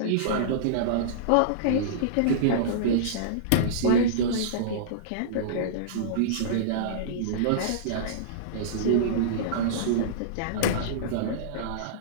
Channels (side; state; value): both; different; correlation -0.03